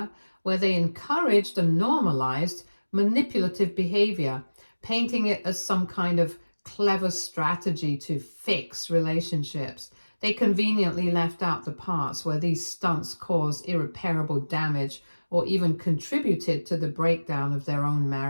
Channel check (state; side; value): inverted; both; correlation -1.00